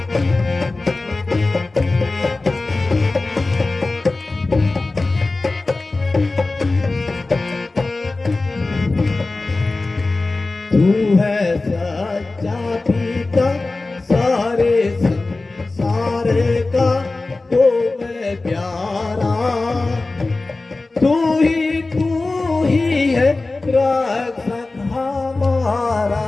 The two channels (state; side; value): quieter; right; 3.3 dB